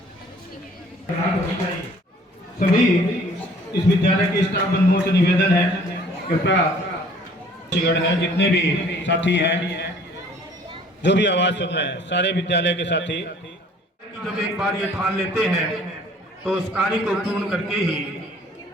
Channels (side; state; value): both; normal; correlation 0.54